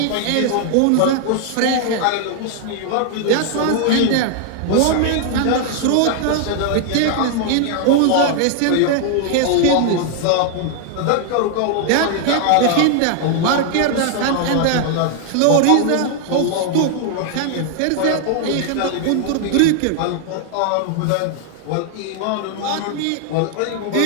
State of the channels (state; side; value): different; both; correlation 0.00